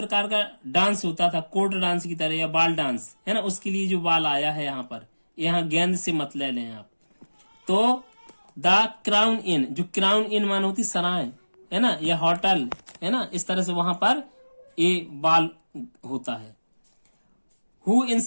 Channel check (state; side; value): inverted; both; correlation -1.00